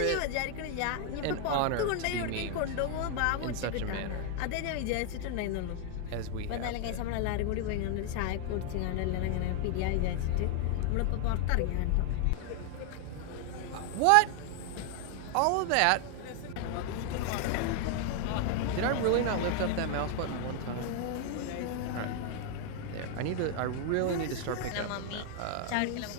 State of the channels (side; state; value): both; different; correlation 0.00